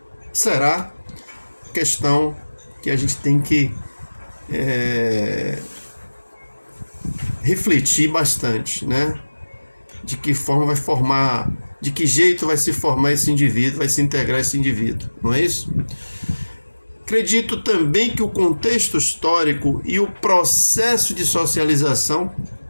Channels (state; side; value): inverted; both; correlation -1.00